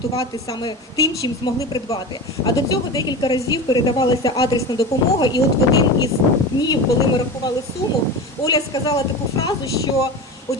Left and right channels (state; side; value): normal; both; correlation 0.28